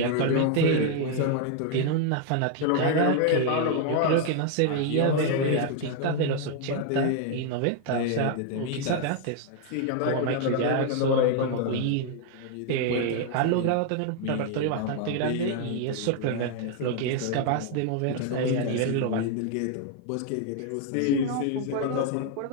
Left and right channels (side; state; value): both; different; correlation 0.00